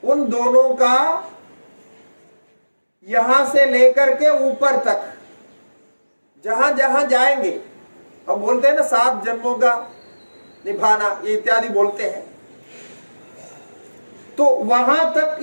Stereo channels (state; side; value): inverted; both; correlation -1.00